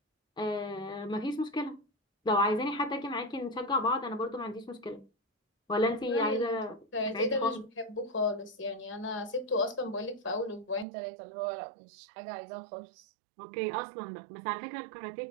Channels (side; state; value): left; drops out; at 10.9 s